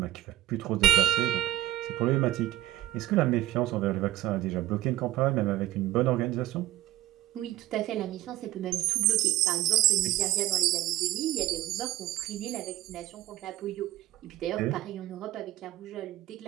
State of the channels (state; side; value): quieter; left; 15.0 dB